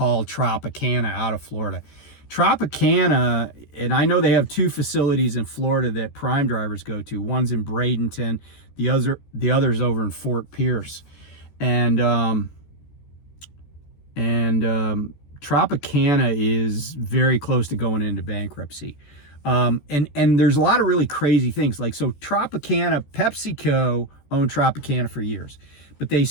Tropicana out of Florida. Tropicana, and I know they have two facilities in Florida that prime drivers go to. One's in Bradenton, the other's over in Fort Pierce. And Tropicana is very close to going into bankruptcy. And there's a lot of really crazy things. Like, so Tropicana, PepsiCo owned Tropicana for years, but they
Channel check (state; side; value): late; right; 14 ms